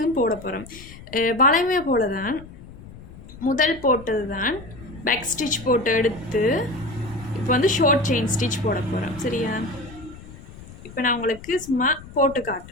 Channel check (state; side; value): noise; left; rumble, 17 dB below the sound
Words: போட போகிறோம். வளைமை போல தான் முதல் போட்டது தான் பேக் ஸ்டிச் போட்டு எடுத்து இப்போ வந்து ஷார்ட் செயின் ஸ்டிச் போட போகிறோம். சரியா? இப்போ நான் உங்களுக்கு சும்மா போட்டு